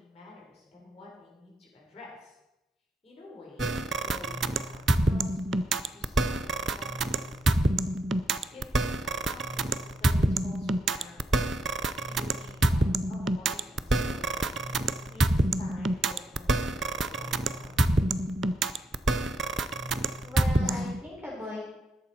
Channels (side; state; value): both; normal; correlation 0.80